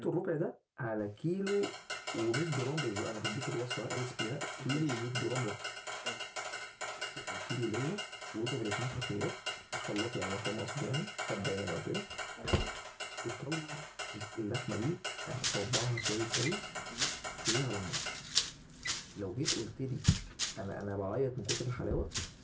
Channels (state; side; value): identical; both; correlation 1.00